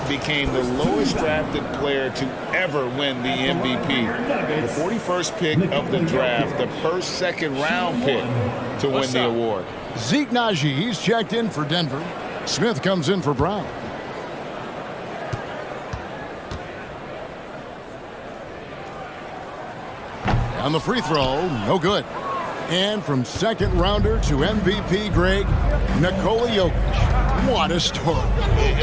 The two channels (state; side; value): identical; both; correlation 1.00